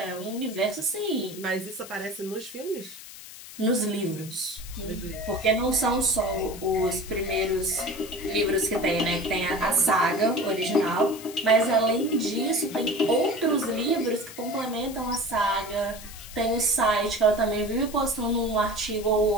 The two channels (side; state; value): left; noise; hiss, 15 dB below the sound